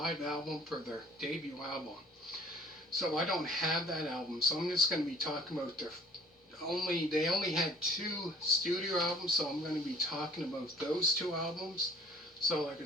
album for their debut album. So I don't have that album, so I'm just going to be talking about they only had two studio albums, so I'm going to be talking about those two albums. So like I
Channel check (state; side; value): normal; both; correlation 0.54